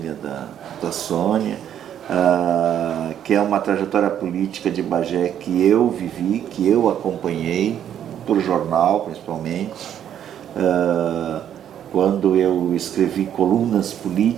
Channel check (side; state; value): left; quieter; 9.9 dB